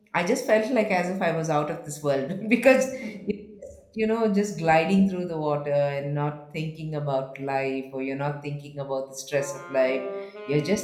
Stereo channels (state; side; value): identical; both; correlation 1.00